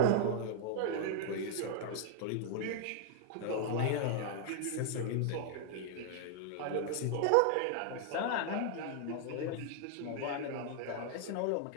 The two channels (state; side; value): different; both; correlation 0.00